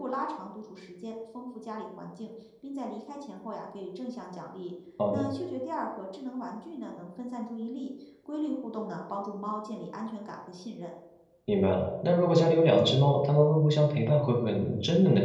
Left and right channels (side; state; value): both; identical; correlation 1.00